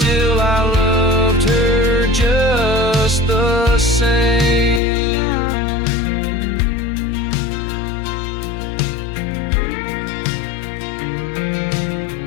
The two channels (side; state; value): right; drops out; at 4.8 s